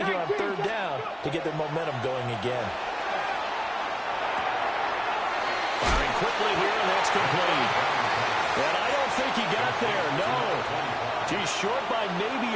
here on 3rd down to get their momentum going again. Firing quickly here, and that's complete. And I don't think he got there, no. He's short by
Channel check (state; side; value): identical; both; correlation 1.00